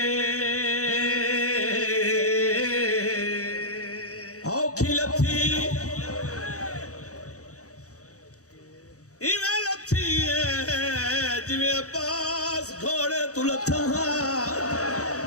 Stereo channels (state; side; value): late; right; 0.66 ms